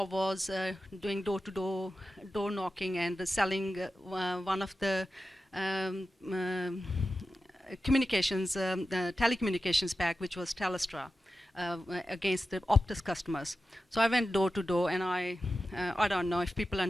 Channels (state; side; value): normal; both; correlation 0.92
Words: was doing door-to-door, door knocking, and selling one of the communications, telecommunications pack, which was Telstra. against the Optus customers. So I went door to door, and I don't know if people